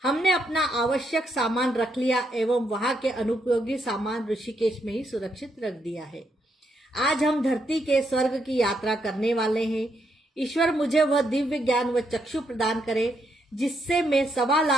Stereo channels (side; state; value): both; normal; correlation 0.78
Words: हमने अपना आवश्यक सामान रख लिया एवं वहां के अनुपयोगी सामान ऋषिकेश में ही सुरक्षित रख दिया है। आज हम धरती के स्वर्ग की यात्रा करने वाले हैं। ईश्वर मुझे वह दिव्य ज्ञान व चक्षु प्रदान करे जिससे मैं 1.25